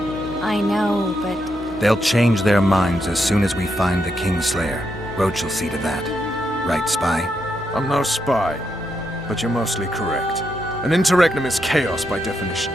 I know, but... They'll change their minds as soon as we find the Kingslayer. Roach will see to that. Right, Spy? I'm no spy, but you're mostly correct. An interregnum is chaos by definition.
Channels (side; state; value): both; normal; correlation 0.81